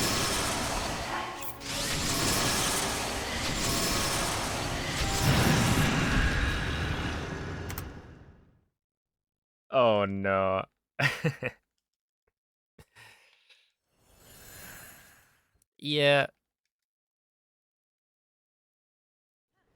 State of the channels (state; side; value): identical; both; correlation 1.00